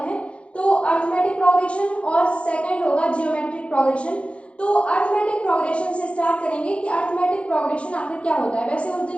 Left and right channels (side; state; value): right; late; 0.061 ms